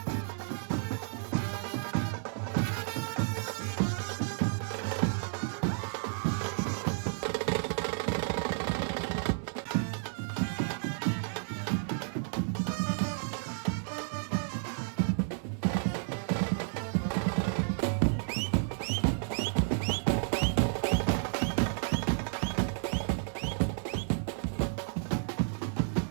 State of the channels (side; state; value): left; silent; 56 dB below the other